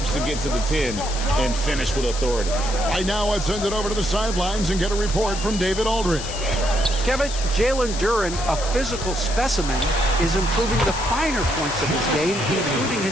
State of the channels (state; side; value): noise; left; hiss, 8 dB below the sound